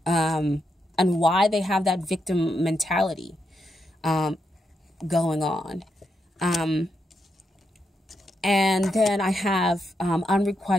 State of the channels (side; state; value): both; normal; correlation 0.82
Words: and why they have that victim mentality going on. And then I have